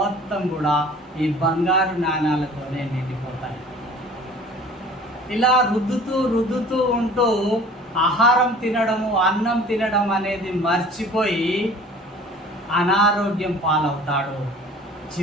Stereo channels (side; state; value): both; normal; correlation 0.47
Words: కూడా ఈ బంగారు నాణాలతోనే నిండిపోతాయి. ఇలా రుద్దుతూ ఉంటూ ఆహారం తినడము, అన్నం తినడం అనేది మర్చిపోయి అనారోగ్యం పాలవుతాడు,